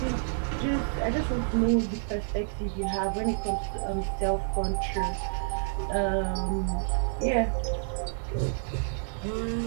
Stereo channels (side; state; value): left; silent; 59 dB below the other